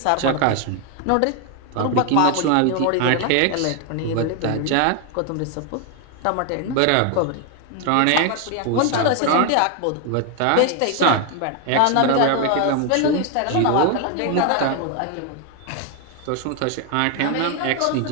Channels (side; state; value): both; different; correlation 0.01